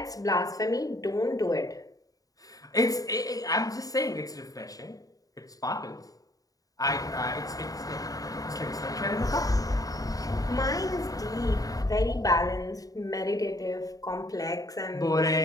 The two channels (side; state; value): right; late; 0.17 ms